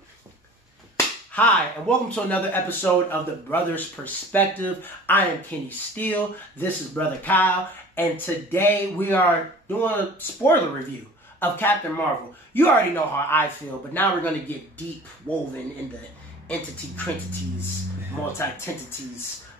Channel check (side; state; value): both; normal; correlation 0.44